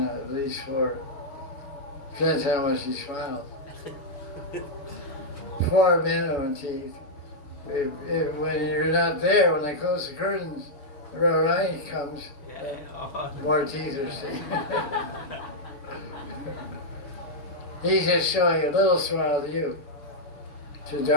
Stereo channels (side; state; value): right; late; 7.1 ms